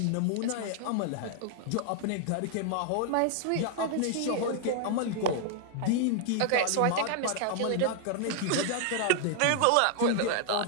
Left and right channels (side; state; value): both; different; correlation 0.00